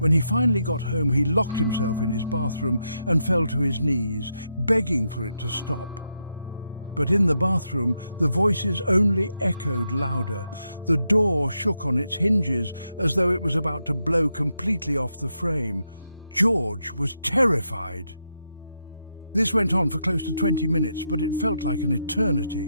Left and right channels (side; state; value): both; inverted; correlation -0.82